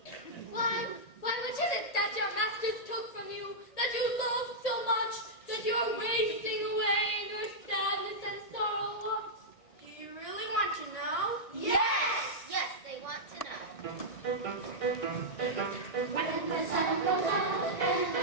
Why what is it that your masters took from you, that you love so much, that you are wasting away in your sadness and sorrow? Do you really want to know? Yes! Yes, they want to know. When the sun goes out and I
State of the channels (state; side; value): late; right; 1.8 ms